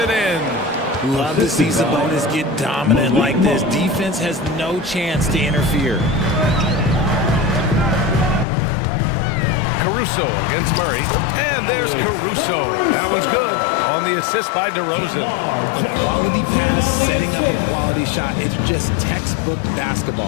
in. Love to see Sabonis get dominant like this. Defense has no chance to interfere. Caruso against Murray. And there's Caruso. That one's good. On the assist by DeRozan. A quality pass, setting up a quality shot. It's just textbook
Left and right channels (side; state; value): right; drops out; at 8.5 s